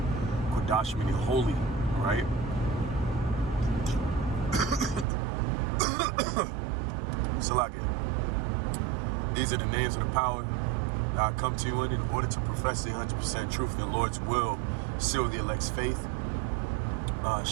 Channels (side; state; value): left; drops out; at 5.1 s